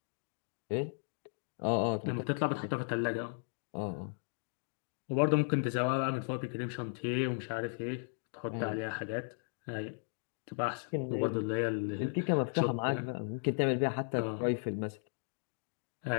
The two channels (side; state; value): right; silent; digital silence